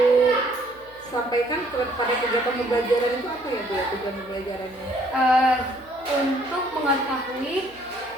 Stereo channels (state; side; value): noise; left; hum, 26 dB below the sound